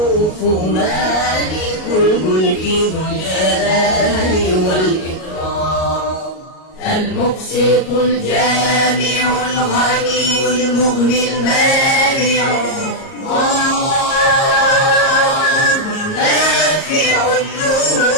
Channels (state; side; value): late; right; 38 ms